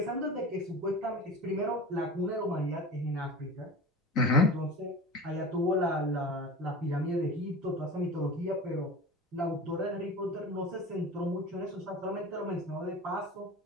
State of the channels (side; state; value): both; normal; correlation 0.33